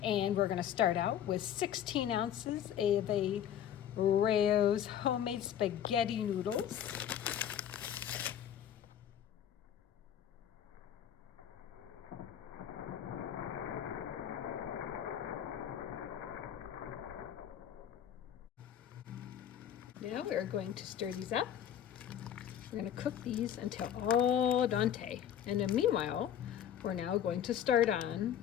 And we're going to start out with 16 ounces of a Rao's homemade spaghetti noodles. Now we're going to stir these up. We're going to cook these until al dente. And then meanwhile, we're now going to start on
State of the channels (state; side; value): quieter; right; 10.0 dB